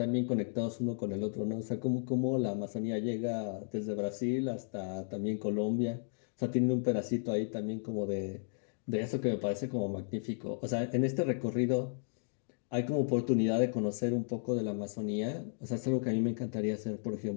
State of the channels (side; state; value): right; silent; digital silence